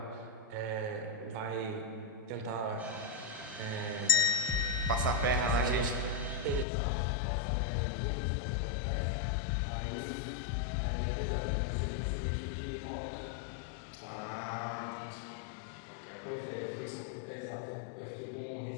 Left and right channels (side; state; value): right; drops out; at 6.7 s